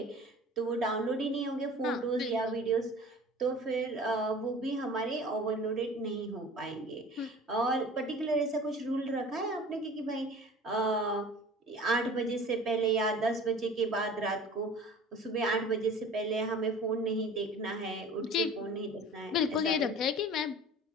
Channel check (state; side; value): normal; both; correlation 0.43